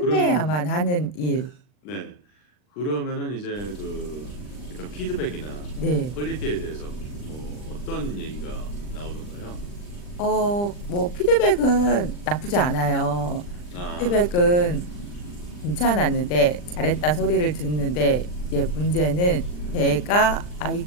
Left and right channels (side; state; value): right; late; 40 ms